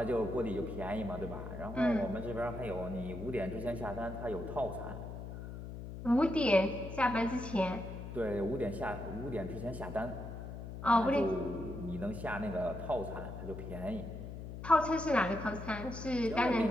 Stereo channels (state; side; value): noise; left; hum, 9 dB below the sound